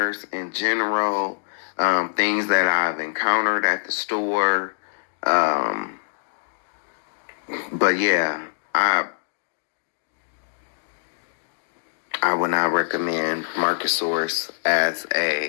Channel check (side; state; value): right; silent; digital silence